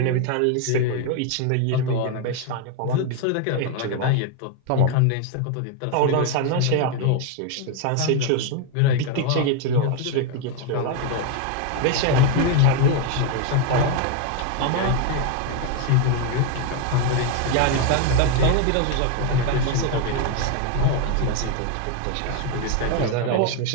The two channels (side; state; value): both; different; correlation 0.01